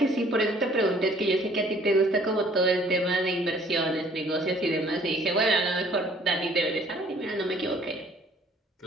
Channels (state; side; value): normal; both; correlation 0.57